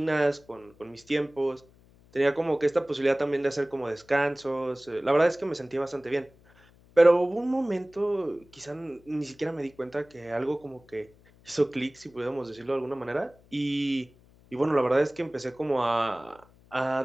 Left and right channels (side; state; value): left; noise; hum, 28 dB below the sound